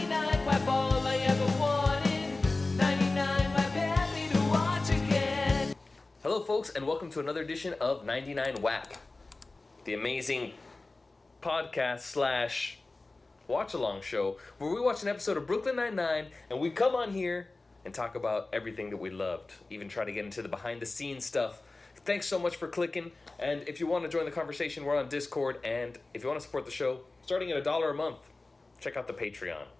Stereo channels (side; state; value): right; quieter; 3.3 dB